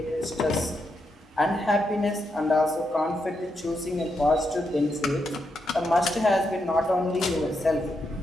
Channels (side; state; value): both; normal; correlation 0.82